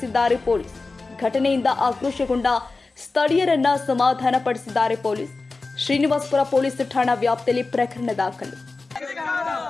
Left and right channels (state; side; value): quieter; right; 3.7 dB